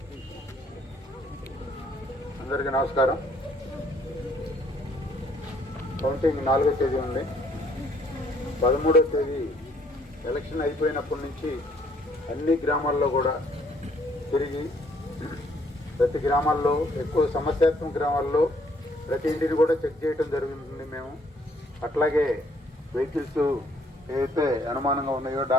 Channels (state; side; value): normal; both; correlation 0.65